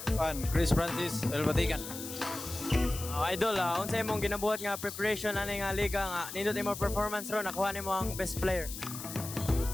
Chris Francis Elbatikan. Idol, unsay imong ginabuhat nga preparation ani nga liga nga nindot imo performance ron nakuha nimo ang best player.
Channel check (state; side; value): noise; left; hiss, 9 dB below the sound